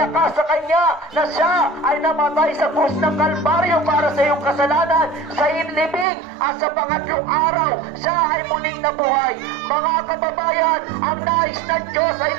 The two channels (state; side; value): drops out; left; at 6.1 s